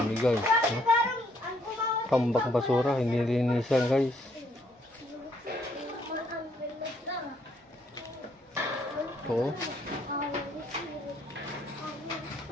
guys. Tambak basura, hindi linisan guys. Ito.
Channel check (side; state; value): both; normal; correlation 0.69